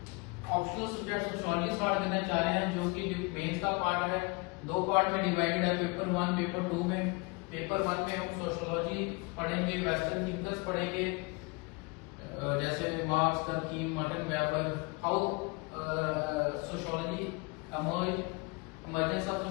ऑप्शनल सब्जेक्ट सोशियोलॉजी स्टार्ट करना चाह रहे हैं, जो कि मेंस का पार्ट है, दो पार्ट में डिवाइडेड है, पेपर 1 पेपर 2 में। पेपर 1 में हम सोशियोलॉजी पढ़ेंगे, वेस्टर्न थिंकर्स पढ़ेंगे, जैसे Marx, Durkheim, Martin Weber, how sociology emergence of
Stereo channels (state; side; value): quieter; right; 28.5 dB